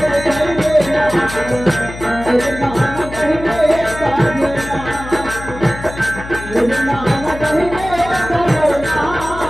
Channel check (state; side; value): noise; left; hum, 12 dB below the sound